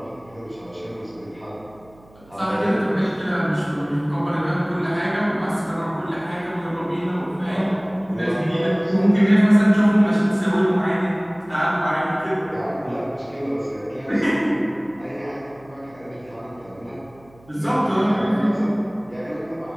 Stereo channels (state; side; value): noise; right; hum, 26 dB below the sound